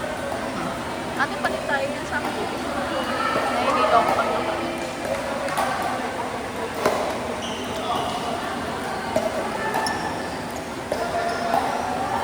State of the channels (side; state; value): both; identical; correlation 1.00